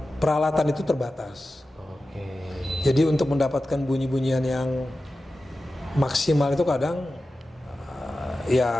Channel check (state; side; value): normal; both; correlation 0.94